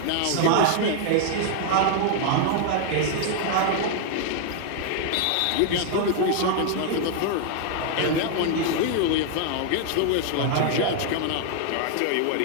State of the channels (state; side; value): different; both; correlation 0.00